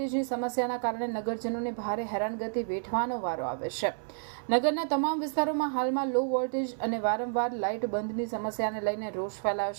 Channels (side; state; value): left; silent; 58 dB below the other